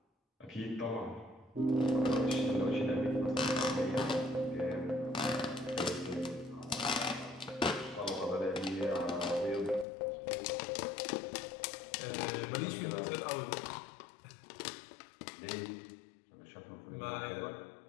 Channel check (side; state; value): right; drops out; at 9.9 s